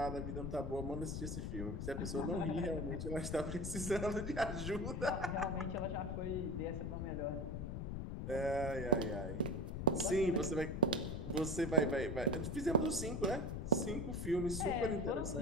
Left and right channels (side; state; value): left; noise; rumble, 4 dB below the sound